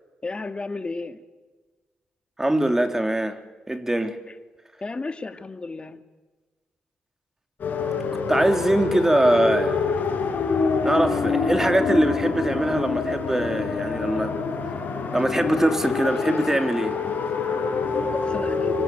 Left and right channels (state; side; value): normal; both; correlation 0.86